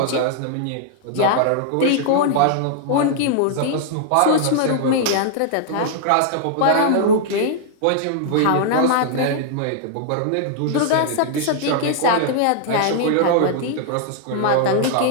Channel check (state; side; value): different; both; correlation -0.01